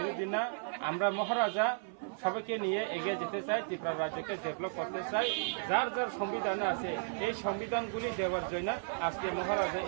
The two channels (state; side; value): silent; left; 55 dB below the other